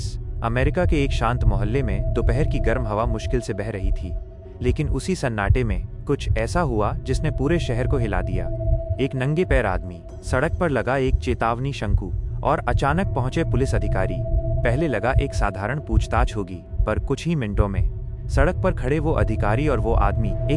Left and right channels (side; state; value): both; identical; correlation 1.00